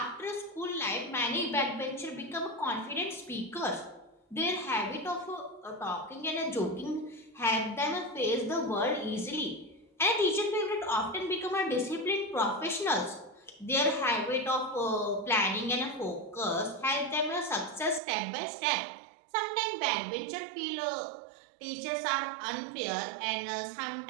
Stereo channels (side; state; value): left; drops out; at 18.0 s